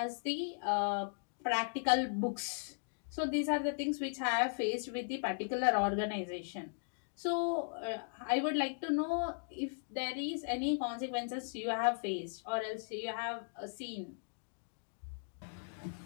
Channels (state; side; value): silent; right; digital silence